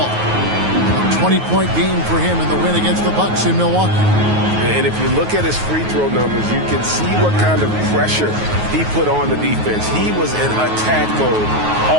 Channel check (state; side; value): late; left; 9.4 ms